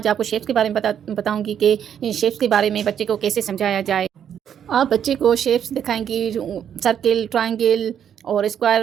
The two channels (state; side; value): quieter; left; 9.0 dB